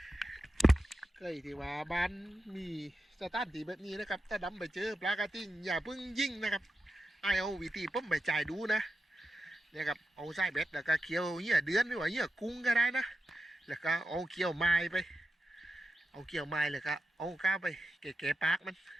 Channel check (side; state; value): both; normal; correlation 0.90